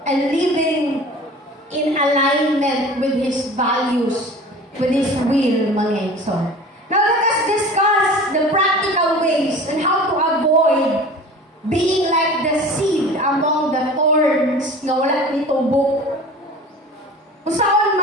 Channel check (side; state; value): both; normal; correlation 0.40